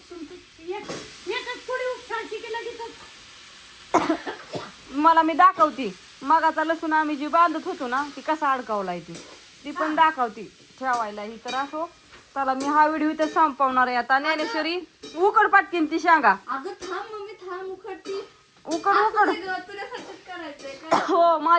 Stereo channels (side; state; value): both; identical; correlation 1.00